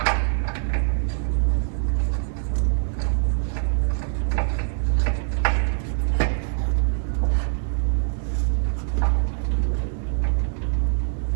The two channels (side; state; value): left; silent; digital silence